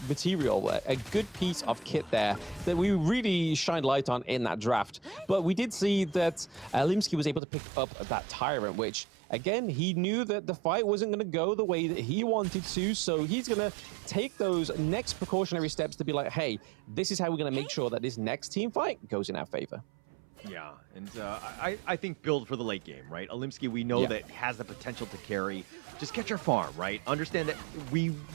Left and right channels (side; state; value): left; drops out; at 7.4 s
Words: material, a good piece of kit there that we really shined light on in that draft. But we did see that Limsky was able to pick up that Tyrant, which again, he knew that the fight wasn't going to go the way that he wanted to, so he's going to take those next precautionary steps to be like, hey, this is how we're going to make sure that this next team fight goes in our favor. Yeah, and I think build for the late game, right? Olimsky, we know that has the potential to carry. Just get your farm, right? Understand that we